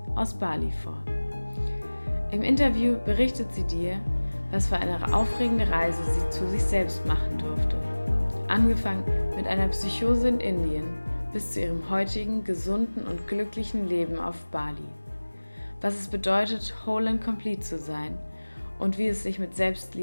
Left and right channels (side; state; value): both; inverted; correlation -1.00